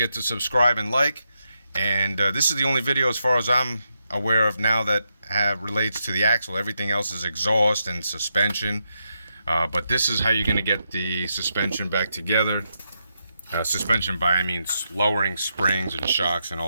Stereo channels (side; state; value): both; inverted; correlation -0.84